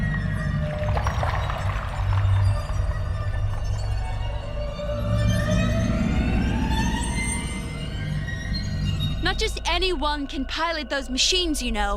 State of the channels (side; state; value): both; identical; correlation 1.00